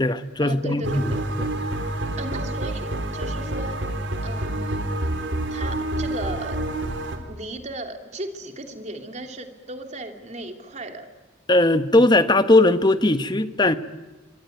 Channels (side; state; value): both; normal; correlation 0.54